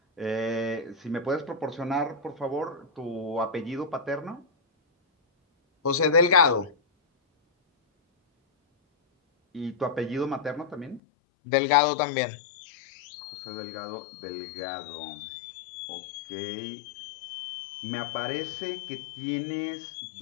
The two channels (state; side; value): drops out; right; at 11.0 s